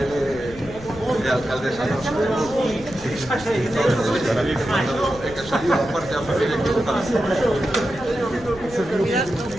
de alcaldesa nosa. É que saliu a parte da familia equivocada.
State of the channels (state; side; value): noise; left; rumble, 17 dB below the sound